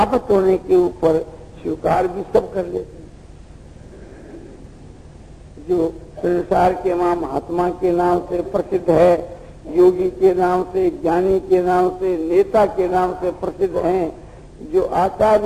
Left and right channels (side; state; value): both; identical; correlation 1.00